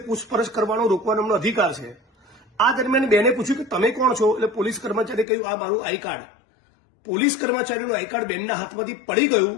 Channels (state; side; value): drops out; right; at 5.2 s